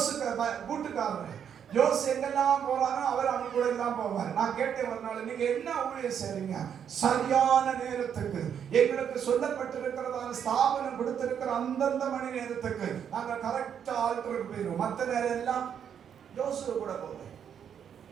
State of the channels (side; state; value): left; quieter; 8.3 dB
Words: கூட்டுக்காரர் ஜோஸ் எங்கெல்லாம் போறானோ அவர் அவங்க கூட எல்லாம் போவார். நான் கேட்டேன் ஒரு நாள், நீங்க என்ன ஊழியம் செய்றீங்க? சரியான நேரத்துக்கு எங்களுக்கு சொல்லப்பட்டிருக்கிறதான ஸ்தாபனம் கொடுத்திருக்கிற அந்தந்த மணி நேரத்துக்கு நாங்க கரெக்டா ஆல்டருக்கு போயிடுவோம். மற்ற நேரம் எல்லாம் ஜோசு கூட போவேன்.